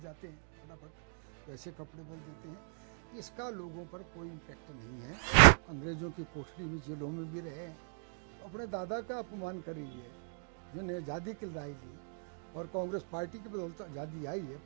जाते हैं फटाफट, वैसे कपड़े बदल देते हैं। इसका लोगों पर कोई इम्पैक्ट नहीं है। अंग्रेजों की कोठरी में, जेलों में भी रहे, अपने दादा का अपमान कर रही है जिन्हें आज़ादी दिलाई दी, और कांग्रेस पार्टी की बदौलत आज़ादी आई है।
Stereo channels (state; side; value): silent; left; 52 dB below the other